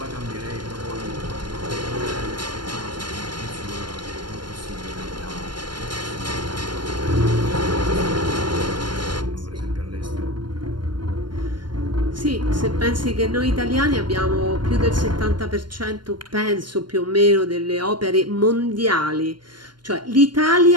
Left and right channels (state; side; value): late; left; 0.72 ms